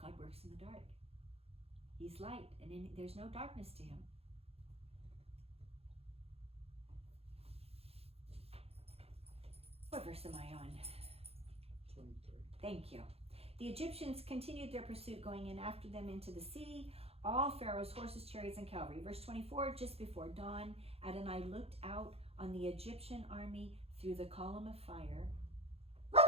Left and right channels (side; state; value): left; late; 0.29 ms